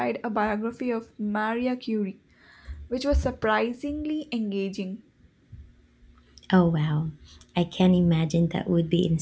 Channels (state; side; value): identical; both; correlation 1.00